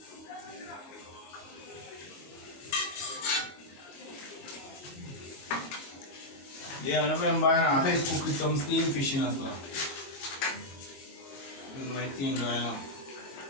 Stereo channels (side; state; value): right; late; 22 ms